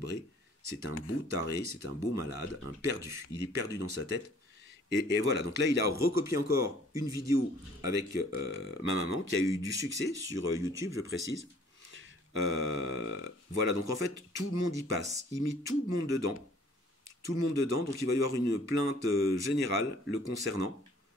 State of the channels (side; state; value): both; normal; correlation 0.56